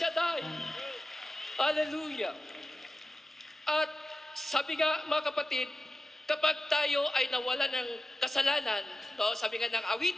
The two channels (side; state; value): both; normal; correlation 0.94